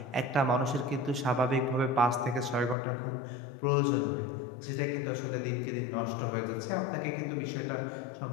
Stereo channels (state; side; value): drops out; right; at 2.8 s